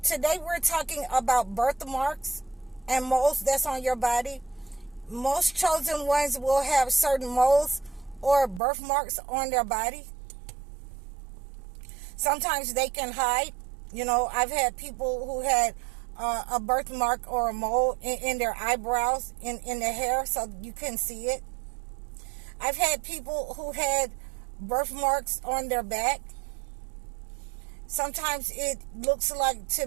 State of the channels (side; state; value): left; drops out; at 8.6 s